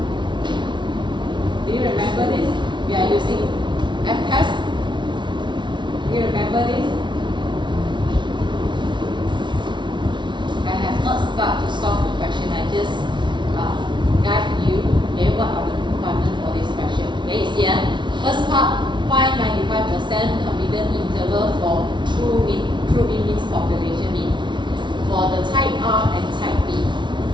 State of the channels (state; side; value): late; left; 0.23 ms